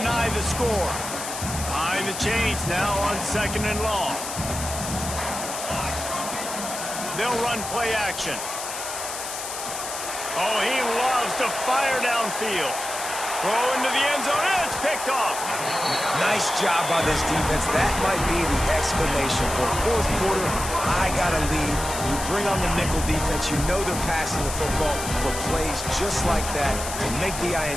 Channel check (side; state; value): left; noise; hiss, 7 dB below the sound